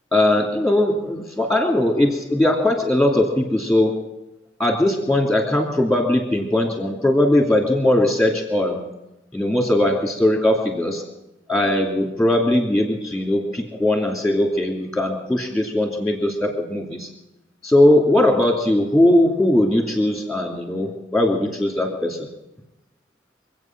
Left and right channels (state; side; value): normal; both; correlation 0.81